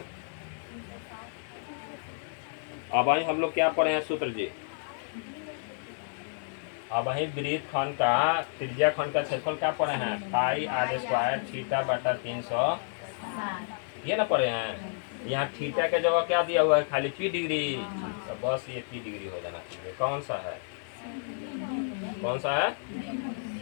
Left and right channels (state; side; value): silent; right; digital silence